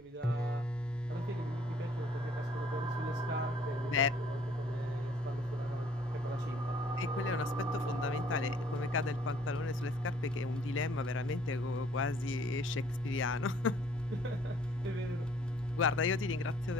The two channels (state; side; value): normal; both; correlation 0.59